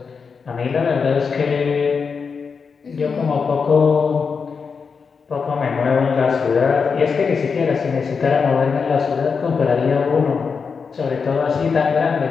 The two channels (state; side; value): quieter; right; 5.5 dB